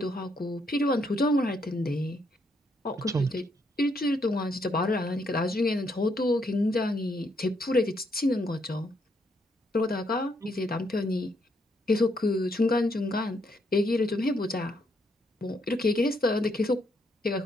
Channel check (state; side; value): normal; both; correlation 0.75